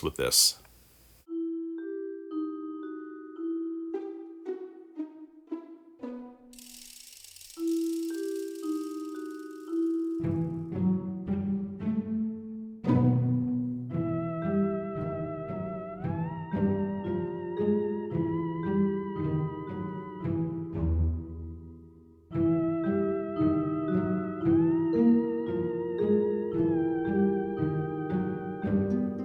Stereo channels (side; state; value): both; identical; correlation 1.00